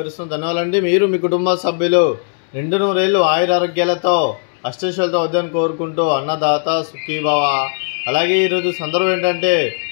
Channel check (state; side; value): silent; right; 68 dB below the other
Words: ధన్యవాదాలండి. మీరు మీ కుటుంబ సభ్యులు నిండు నూరేళ్లు ఆయురారోగ్యాలతో అష్టైశ్వర్యాలతో వద్దని కోరుకుంటూ అన్నదాత సుఖీభవ. అలాగే ఈరోజు సందర్భం ఏంటంటే